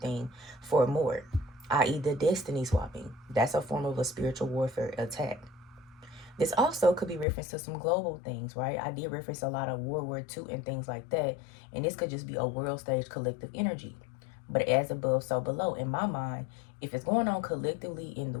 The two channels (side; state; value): right; drops out; at 7.2 s